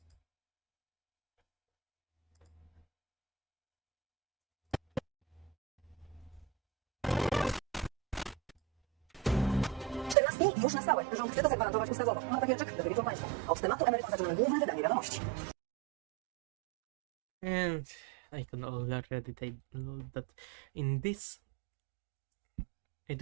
Już na stałe. Rząd chce to zagwarantować ustawowo. Ma takie rzeczy, które wiedzą Państwo. Od tematu emerytur zaczynamy główne wydanie wiadomości. And I can already take note that in this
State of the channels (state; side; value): drops out; left; at 10.2 s